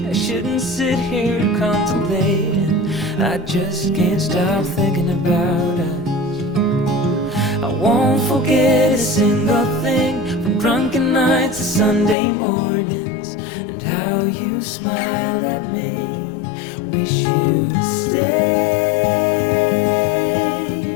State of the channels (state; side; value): drops out; right; at 12.2 s